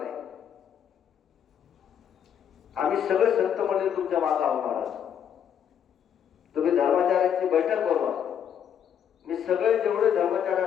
आम्ही सगळे संत मंडळी तुमच्या मागे आहोत महाराज. तुम्ही धर्माचार्यांची बैठक बोलवा. मी सगळे जेवढे धर्माचार्य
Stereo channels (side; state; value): right; quieter; 8.7 dB